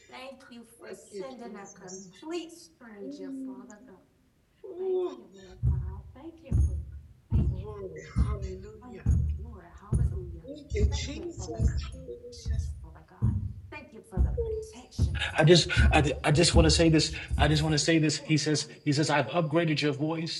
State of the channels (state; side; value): identical; both; correlation 1.00